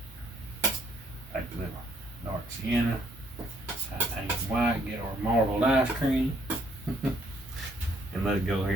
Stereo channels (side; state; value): both; normal; correlation 0.67